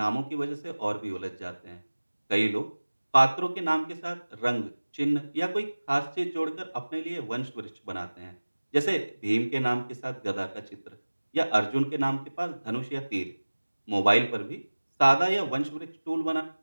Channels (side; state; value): both; inverted; correlation -1.00